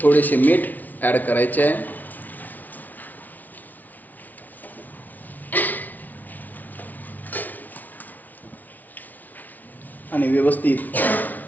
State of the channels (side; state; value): right; late; 0.079 ms